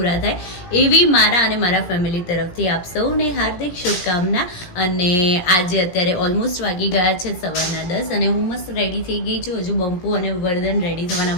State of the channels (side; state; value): right; late; 17 ms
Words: થાય એવી મારા અને મારા ફેમિલી તરફથી આપ સૌને હાર્દિક શુભકામના. અને આજે અત્યારે ઓલમોસ્ટ વાગી ગયા છે સવારના 10 અને હું મસ્ત રેડી થઈ ગઈ છું. હજુ બંપુ અને વર્ધન રેડી